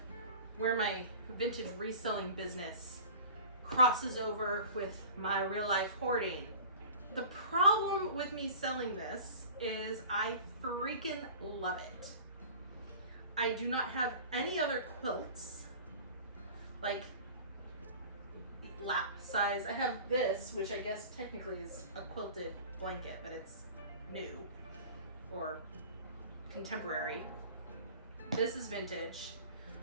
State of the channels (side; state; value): both; inverted; correlation -0.40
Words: where my vintage reselling business crosses over with my real life hoarding. The problem with me selling this is I freaking love it. I do not have any other quilts like lap size. I have this, which I guess technically is a quilted blanket, but it's new or contemporary. This is vintage.